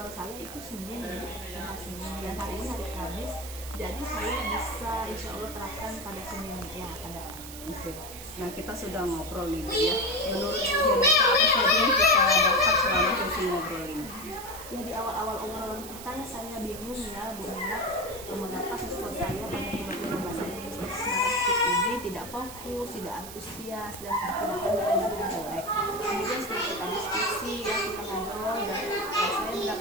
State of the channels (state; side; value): noise; right; hiss, 12 dB below the sound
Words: saya itu Senin ya, Senin, dan hari ini hari Kamis. Jadi saya bisa insya Allah terapkan pada Senin ya akan datang. Oke. Nah, kita sudah ngobrol nih Bu ya. Menurut Bu Janita, apa saja yang kita dapat selama sesi ngobrol ini? Ya, di awal-awal obrolan kita saya bingung ya Bu Nela, mengapa siswa saya pada pembelajaran bahasa Inggris teks naratif ini tidak fokus, tidak antusias, dan bahkan nilai-nilai jelek. Kemudian setelah kita diskusi ya, kita ngobrol, dan saya